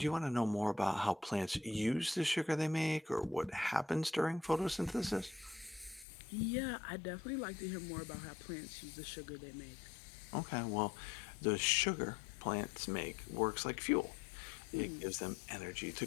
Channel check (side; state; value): right; drops out; at 6.1 s